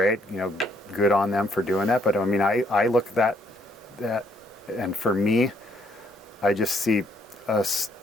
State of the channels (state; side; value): normal; both; correlation 0.69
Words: you know, good on them for doing that. But I mean, I look at that, and for me, I just see a